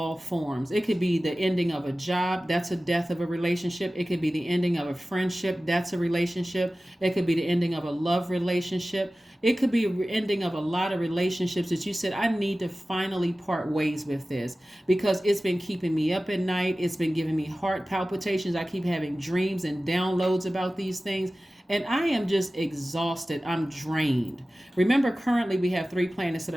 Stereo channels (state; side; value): normal; both; correlation 0.96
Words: forms. It could be the ending of a job. That's a death of a relationship. It could be the ending of a friendship. That's a relationship. It could be the ending of a love relationship. It could be an ending of a lot of relationships that you said, I need to finally part ways with this because it's been keeping me up at night. It's been giving me heart palpitations. I keep having dreams and downloads about these things. And I am just exhausted. I'm drained. Remember, currently we have 3 planets that